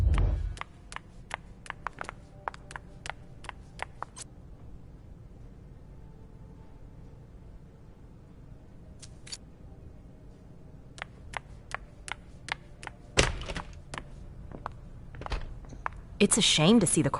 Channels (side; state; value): both; identical; correlation 1.00